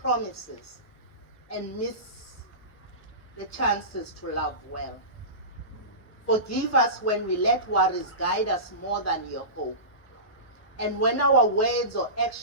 and miss the chances to love well. Forgive us when we let worries guide us more than your hope, and when our words or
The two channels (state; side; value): late; right; 1.0 ms